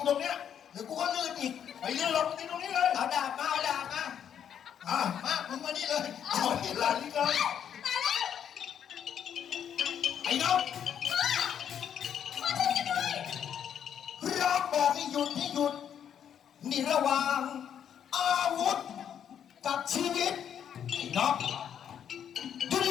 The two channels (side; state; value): right; quieter; 8.9 dB